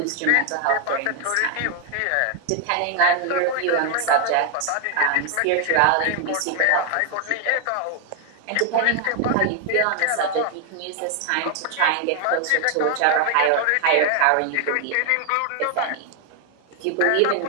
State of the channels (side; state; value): both; different; correlation 0.00